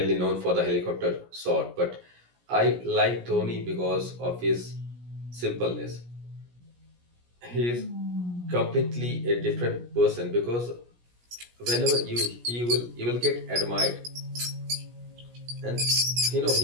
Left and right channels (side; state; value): left; late; 17 ms